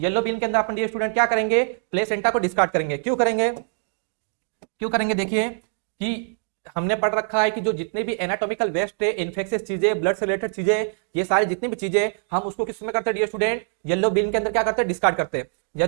बीन के अंदर अपन डियर स्टूडेंट क्या करेंगे, प्लेसेंटा को डिस्कार्ड करेंगे, क्यों करेंगे, क्यों करेंगे, देखिए कि हमने पढ़ रखा है कि जो जितने भी एनाटॉमिकल वेस्ट है, इन्फेक्शियस चीजें, ब्लड से रिलेटेड चीजें, ये सारी जितनी भी चीजें हम उसको किस में करते हैं डियर स्टूडेंट, येलो बीन के अंदर क्या करते हैं, डिस्कार्ड करते हैं।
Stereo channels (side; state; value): left; silent; digital silence